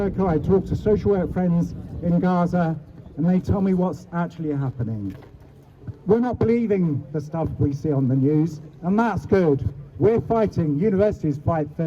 I talk to social work friends in Gaza and they tell me what's actually happening. We're not believing the stuff we see on the news, and that's good. We're fighting, universities fight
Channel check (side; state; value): both; identical; correlation 1.00